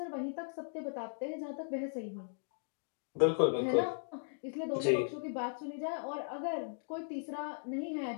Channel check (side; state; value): right; silent; digital silence